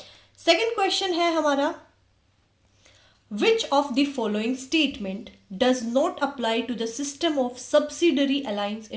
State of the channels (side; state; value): both; identical; correlation 1.00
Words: सेकेंड क्वेश्चन है हमारा which of the following statement does not apply to the system of subsidiary alliance